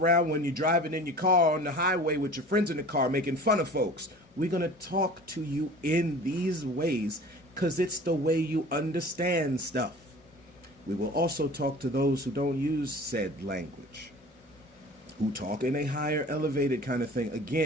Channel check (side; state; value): both; normal; correlation 0.42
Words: when you're driving in your car on the highway with your friends in the car making fun of folks. We're going to talk to you in these ways because it's the way you understand stuff. We will also talk to those who don't use said language, who talk in a higher elevated kind of thing.